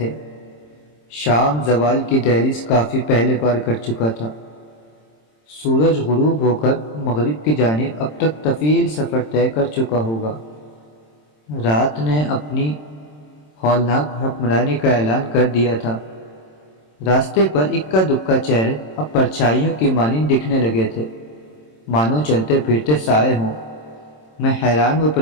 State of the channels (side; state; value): right; late; 27 ms